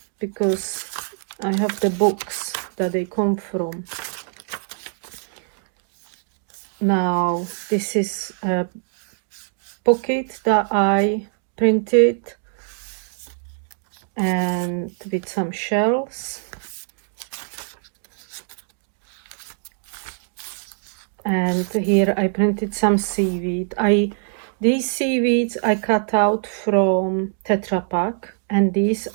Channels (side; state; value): left; silent; digital silence